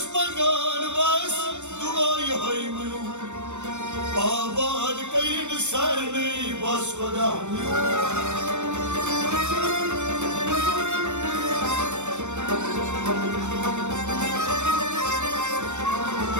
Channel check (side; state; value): left; late; 0.84 ms